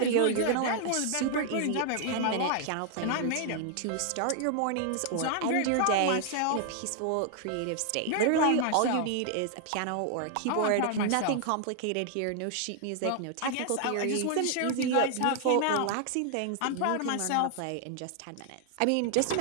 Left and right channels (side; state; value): both; different; correlation 0.00